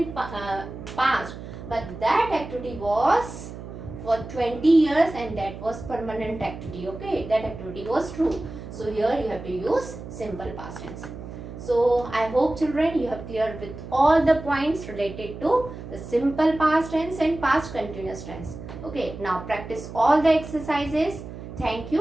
past, but that activity was for 20 years and that was permanent activity. Okay, that activity was true. So here you have to use simple past tense. So I hope children you have cleared with all the points related to the simple past tense and past continuous tense. Okay, now practice all the exercises. Thank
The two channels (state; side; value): noise; right; hum, 11 dB below the sound